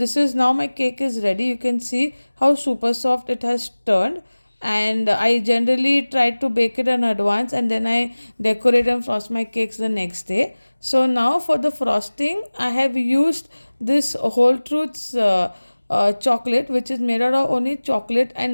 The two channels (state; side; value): inverted; both; correlation -1.00